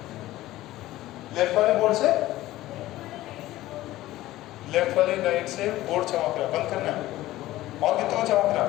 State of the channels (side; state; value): right; quieter; 16.0 dB